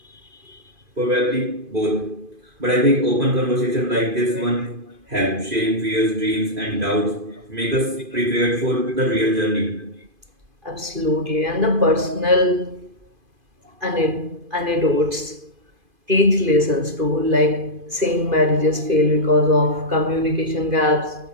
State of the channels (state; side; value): late; left; 2.5 ms